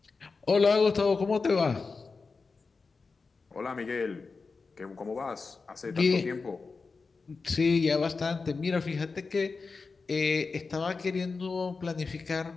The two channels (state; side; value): quieter; right; 4.4 dB